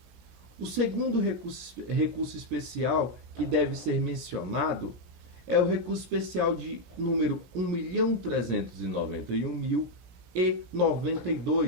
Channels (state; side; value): late; left; 17 ms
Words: O segundo recurso especial que deve ser mencionado é o recurso especial de número